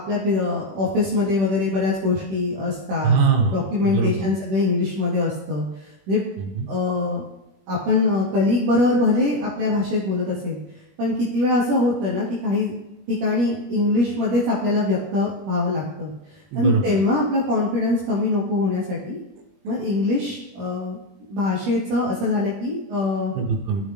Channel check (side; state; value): left; late; 21 ms